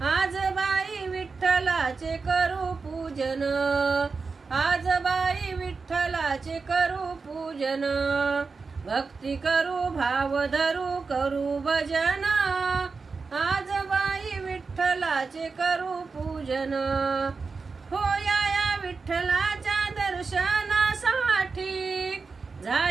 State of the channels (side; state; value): left; quieter; 4.6 dB